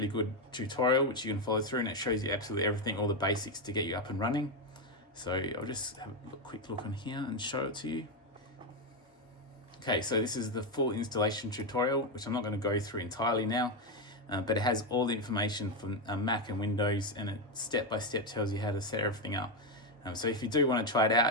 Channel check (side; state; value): both; normal; correlation 0.08